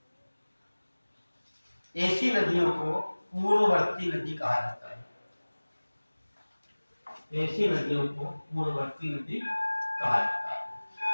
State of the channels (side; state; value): both; inverted; correlation -1.00